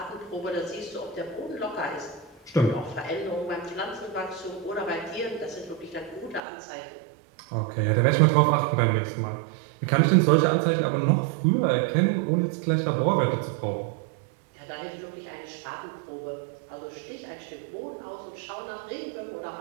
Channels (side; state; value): left; drops out; at 6.4 s